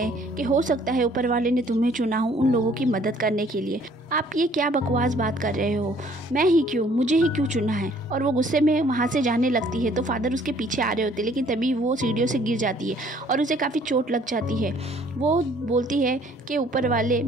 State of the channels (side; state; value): both; normal; correlation 0.59